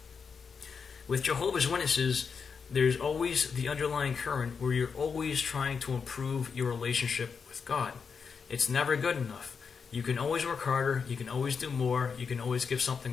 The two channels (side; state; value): right; quieter; 5.9 dB